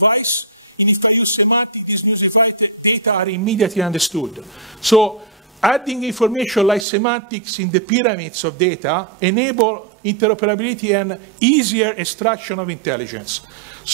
and if I use semantic, this new device, data are immediately understood. So adding information like semantics in the pyramids of data enable interoperability and easier extraction of intelligence.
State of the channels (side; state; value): left; drops out; at 6.9 s